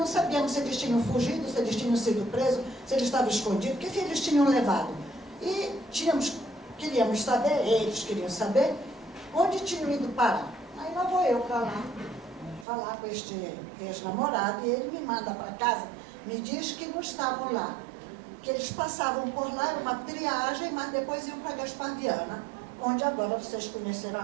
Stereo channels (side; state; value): left; drops out; at 12.7 s